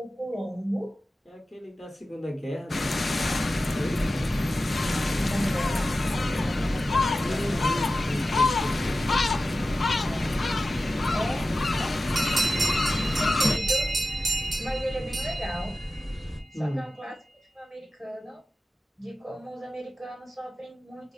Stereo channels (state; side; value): normal; both; correlation 0.94